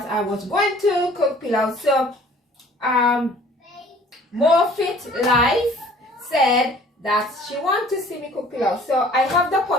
I was going to cook pilau. So More Fit Life said that she wants to see me cook pilau. So I have the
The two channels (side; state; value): both; normal; correlation 0.52